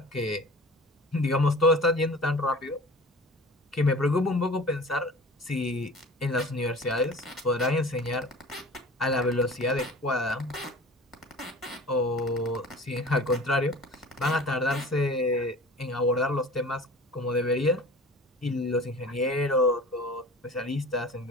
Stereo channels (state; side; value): normal; both; correlation 0.41